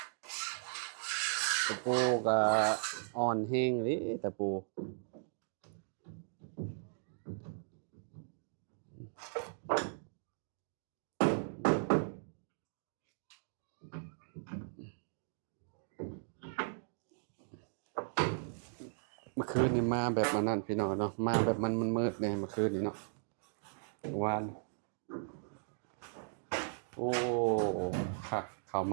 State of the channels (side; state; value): left; silent; digital silence